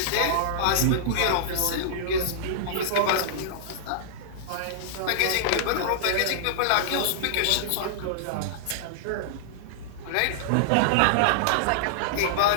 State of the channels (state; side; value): different; both; correlation -0.01